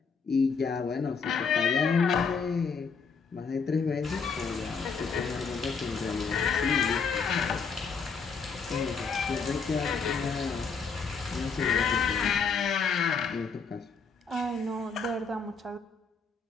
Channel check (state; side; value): quieter; right; 5.3 dB